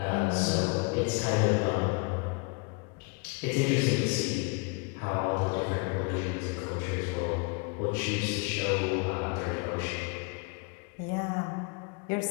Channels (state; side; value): quieter; right; 31.2 dB